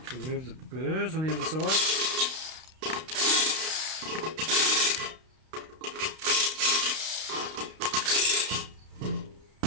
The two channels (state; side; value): late; left; 32 ms